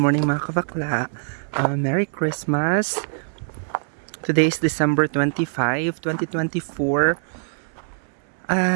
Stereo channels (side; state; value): left; silent; 63 dB below the other